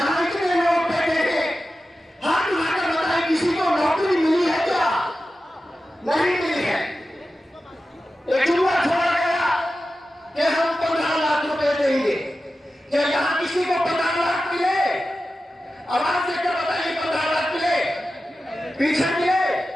इतने लोग बैठे हैं, हाथ उठाकर बताएं किसी को नौकरी मिली है क्या? नहीं मिली है। एक जुमला छोड़ा गया कि हम 15 लाख रुपए देंगे। क्या यहां किसी को 15 लाख मिले? आवाज देकर बताइए।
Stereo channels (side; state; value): both; normal; correlation 0.93